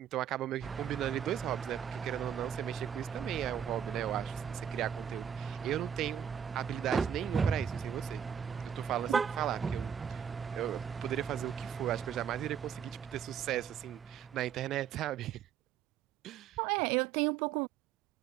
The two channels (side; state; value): left; quieter; 8.5 dB